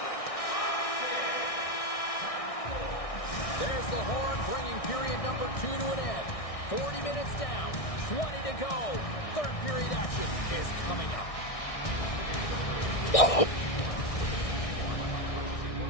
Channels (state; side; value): late; right; 1.6 ms